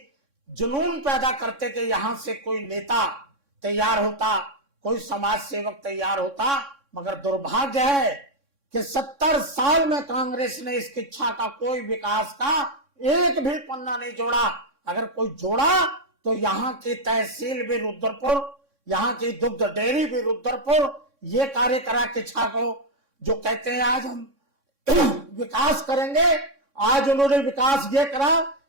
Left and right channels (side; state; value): left; late; 3.6 ms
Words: जुनून पैदा करते कि यहां से कोई नेता तैयार होता, कोई समाज सेवक तैयार होता। मगर दुर्भाग्य है कि 70 साल में कांग्रेस ने इस किच्छा का कोई विकास का एक भी पन्ना नहीं जोड़ा। अगर कोई जोड़ा तो यहाँ की तहसील भी रुद्रपुर, यहाँ की दुग्ध डेयरी भी रुद्रपुर, ये कार्य करा किच्छा को, जो कहते हैं आज हम विकास करेंगे। आज उन्होंने विकास ये करा